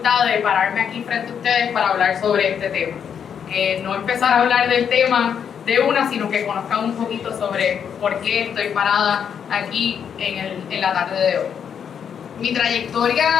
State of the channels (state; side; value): quieter; right; 7.8 dB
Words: de pararme aquí frente a ustedes para hablar sobre este tema. No empezar a hablar del tema de una, sino que conozcan un poquito sobre por qué estoy parada aquí en la tarde de hoy. Mi